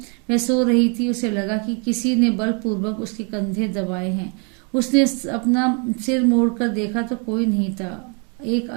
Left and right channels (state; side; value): quieter; left; 36.7 dB